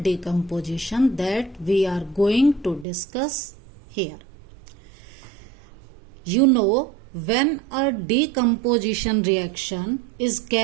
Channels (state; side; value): drops out; left; at 2.9 s